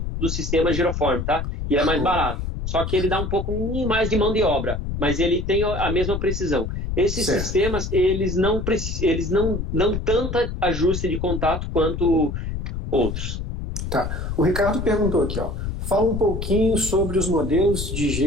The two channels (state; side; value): noise; left; rumble, 4 dB below the sound